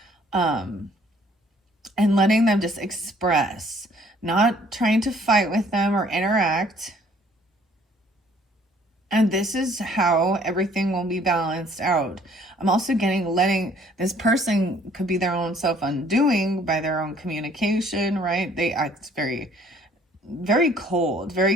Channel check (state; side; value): normal; both; correlation 0.59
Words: And letting them just express, not trying to fight with them or interact. And this is how everything will be balanced out. I'm also letting this person, could be their own self-undoing by their own communication, right? They act very, very cold, very